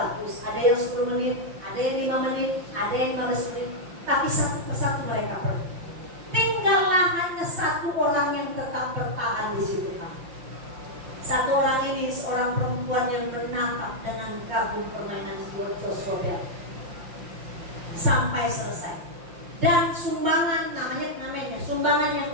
ada yang 10 menit, ada yang 5 menit, ada yang 15 menit. Tapi satu persatu mereka pergi. Tinggallah hanya 1 orang yang tetap bertahan di situ, Pak. 1 orang ini seorang perempuan yang menatap dengan kagum permainan Joshua Bell sampai selesai. Dan sumbangan namanya sumbangan yang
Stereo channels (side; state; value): left; late; 5.8 ms